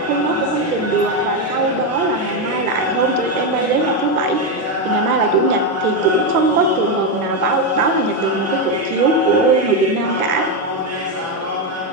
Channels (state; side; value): normal; both; correlation 0.07